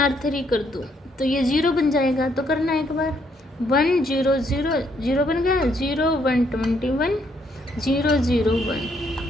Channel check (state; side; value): normal; both; correlation 0.71